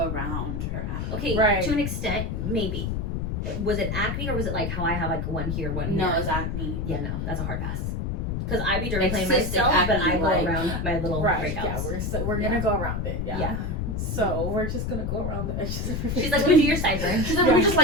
around her acne. Okay, to an extent, maybe. Was it acne or was it like how I have like one here, one here? No, it was acne. Yeah, no, that's a hard pass. Because I be dermaplaning myself, acne, but I go around my little breakouts. Yeah, we're gonna go around it. Yeah. So we're just gonna go around the edges of your face. She's like, we do your sideburn. She's like, we just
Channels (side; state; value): left; noise; rumble, 2 dB below the sound